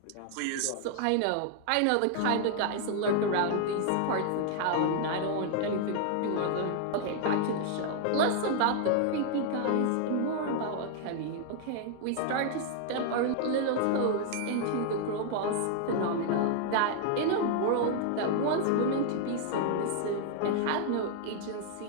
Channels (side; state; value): both; different; correlation 0.00